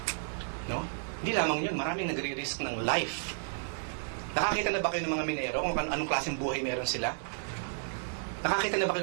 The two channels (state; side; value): silent; left; digital silence